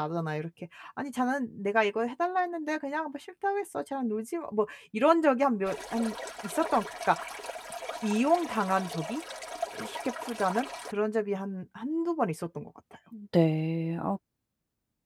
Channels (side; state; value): both; identical; correlation 1.00